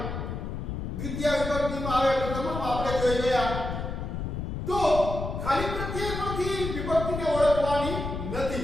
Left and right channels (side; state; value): left; noise; rumble, 4 dB below the sound